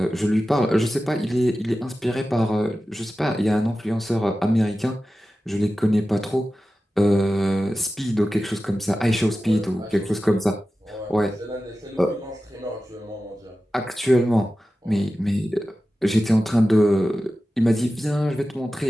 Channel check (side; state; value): both; normal; correlation 0.94